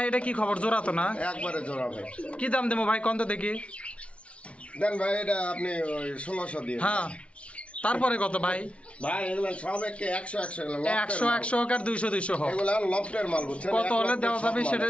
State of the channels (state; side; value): late; right; 0.061 ms